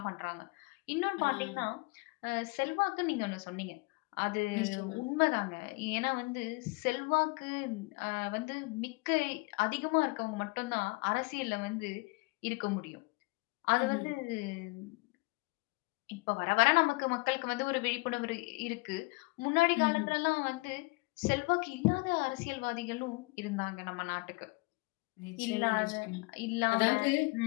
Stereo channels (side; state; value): right; quieter; 27.1 dB